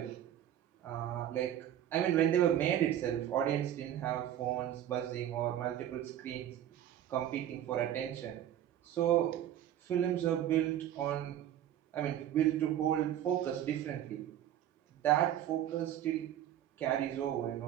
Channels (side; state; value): left; quieter; 11.3 dB